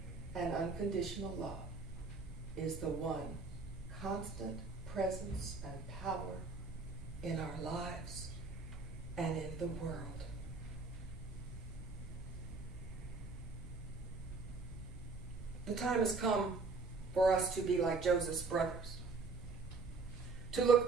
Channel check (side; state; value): left; quieter; 4.1 dB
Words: and unconditional love, is the one constant presence and power in our lives and in the world. The time has come for us to be like Joseph's brothers. To look